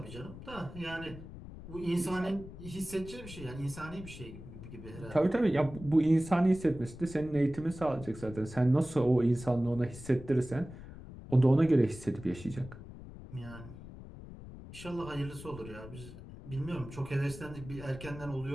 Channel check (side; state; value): left; noise; rumble, 14 dB below the sound